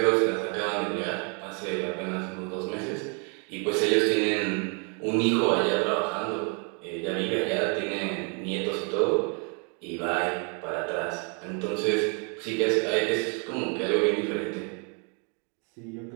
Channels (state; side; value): quieter; left; 37.2 dB